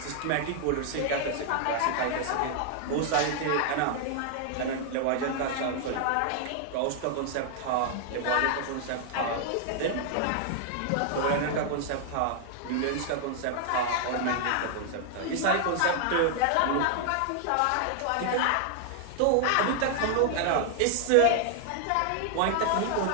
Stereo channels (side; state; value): both; different; correlation 0.00